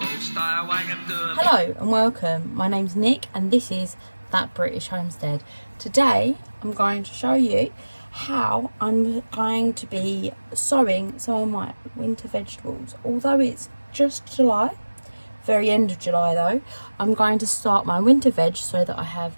stay away and do them. Hello and welcome. My name's Nick and this is That British Homestead. Today I'm going to show you how I'm going to be sowing some of my winter vegetables. Although it's just July, very end of July though, I'm going to start my winter veg so that I have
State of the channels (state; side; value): inverted; both; correlation -1.00